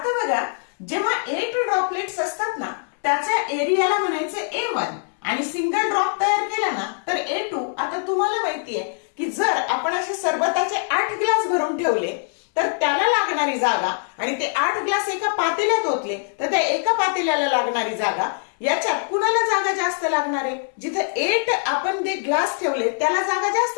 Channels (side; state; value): right; silent; 64 dB below the other